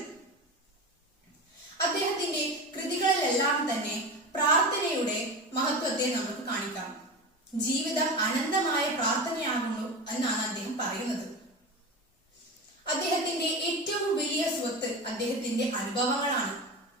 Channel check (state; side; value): normal; both; correlation 0.26